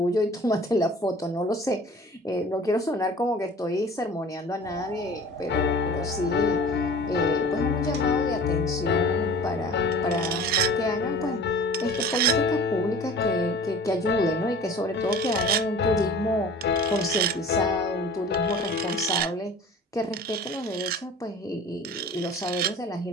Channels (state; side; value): normal; both; correlation 0.43